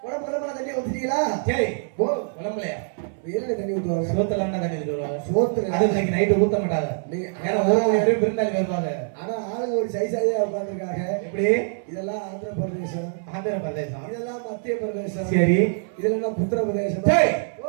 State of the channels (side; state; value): left; silent; 62 dB below the other